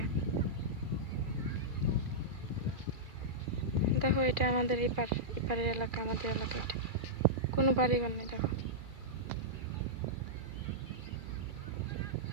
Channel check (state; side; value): late; left; 2.4 ms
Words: দেখো এটা আমাদের এপার, এপারের এলাকা, আমাদের এলাকা। এটা কোনো বাড়ি ঘর নেই, দেখো।